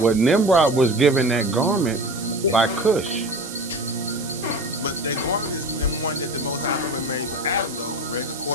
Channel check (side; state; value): right; noise; hiss, 12 dB below the sound